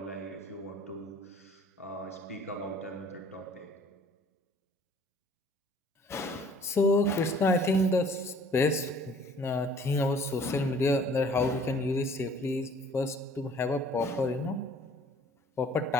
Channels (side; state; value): both; normal; correlation 0.55